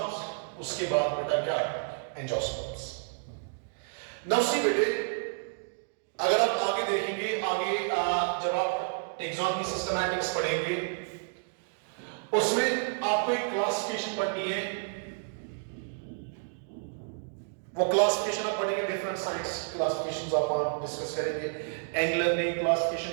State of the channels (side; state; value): left; silent; digital silence